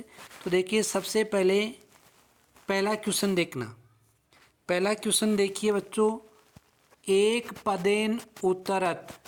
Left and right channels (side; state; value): both; identical; correlation 1.00